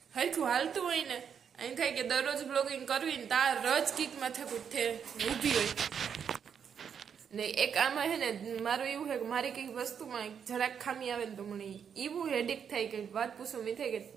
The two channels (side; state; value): left; quieter; 7.5 dB